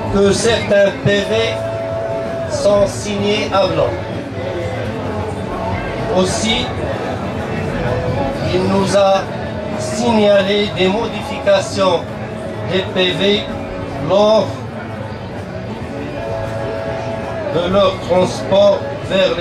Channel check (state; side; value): identical; both; correlation 1.00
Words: que certains PV sont signés à blanc. Aussi, il nous a signalé des modifications des PV lors de leur transport vers